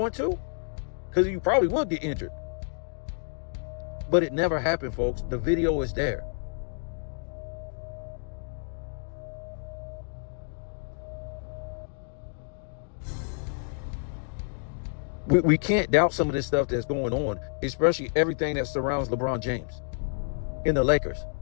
to? Because you probably would get injured. But it never happened, folks. The video is there. We can't doubt some of this stuff that's going on, especially everything that surrounds LeBron James in the Lakers.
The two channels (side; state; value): right; silent; digital silence